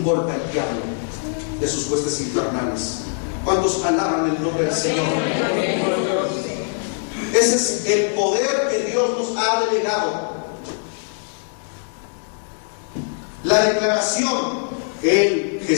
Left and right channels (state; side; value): silent; right; 64 dB below the other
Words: golpe al diablo de sus huestes infernales. ¿Cuántos alaban el nombre del Señor? Ese es el poder que Dios nos ha delegado. La declaración,